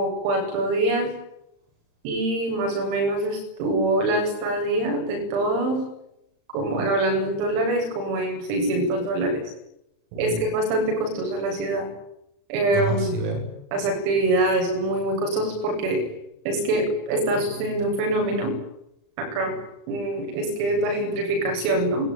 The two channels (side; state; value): left; late; 35 ms